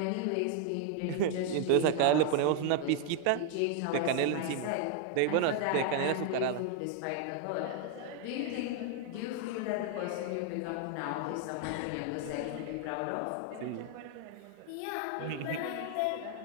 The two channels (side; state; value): both; different; correlation 0.00